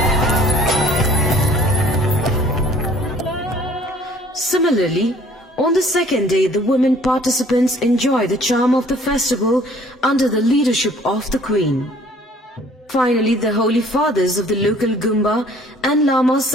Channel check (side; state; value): both; normal; correlation 0.55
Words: Similarly, on the second day, the women participants enjoy the charm of the festival under the leadership of the Queen. Finally, the Holy Fathers of the local Gumba and Lamas